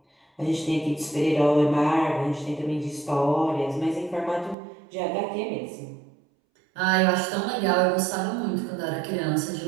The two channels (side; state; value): left; drops out; at 4.5 s